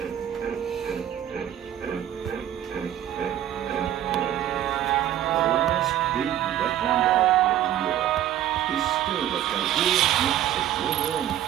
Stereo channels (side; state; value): left; quieter; 11.7 dB